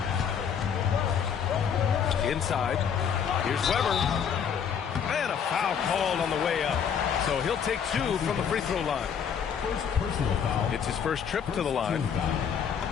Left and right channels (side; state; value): right; quieter; 7.6 dB